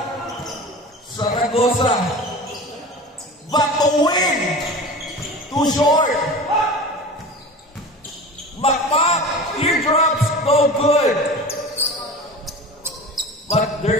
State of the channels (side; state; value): both; normal; correlation 0.34